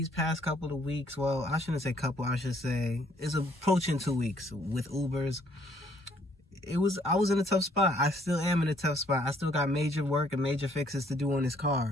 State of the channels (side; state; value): both; normal; correlation 0.65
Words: past couple of weeks, well, I shouldn't say couple, I should say it's approaching 2 weeks with Ubers. I was in a tough spot. I still am in a tough spot. I still got major work and major fixes to do on this